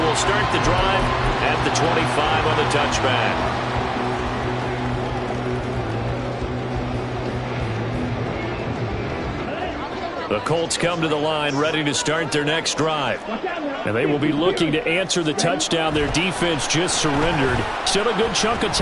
we'll start the drive at the 25 on the touchback. The Colts come to the line ready to start their next drive. And they will be looking to answer the touchdown their defense just surrendered. Still a good chunk of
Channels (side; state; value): both; identical; correlation 1.00